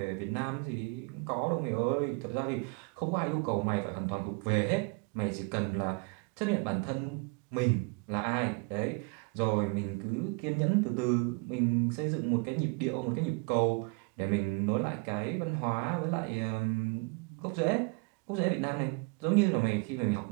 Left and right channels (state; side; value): quieter; left; 31.0 dB